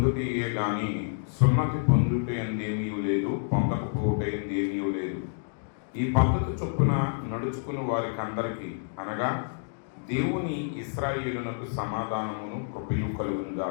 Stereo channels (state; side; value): silent; right; digital silence